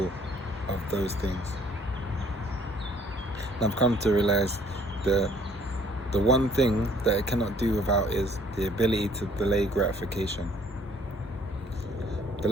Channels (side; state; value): both; normal; correlation 0.60